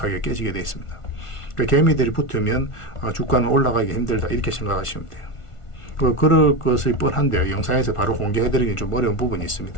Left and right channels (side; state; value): right; late; 1.5 ms